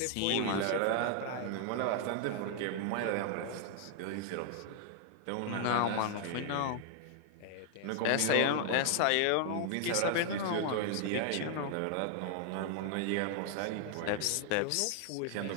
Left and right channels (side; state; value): both; different; correlation 0.00